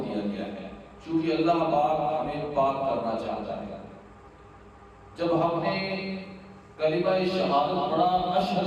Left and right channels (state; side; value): identical; both; correlation 1.00